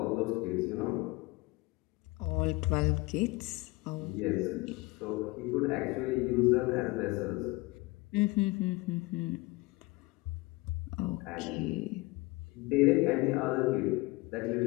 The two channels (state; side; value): quieter; right; 22.5 dB